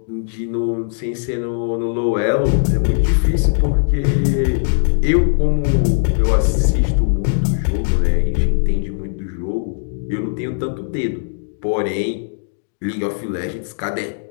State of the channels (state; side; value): silent; right; digital silence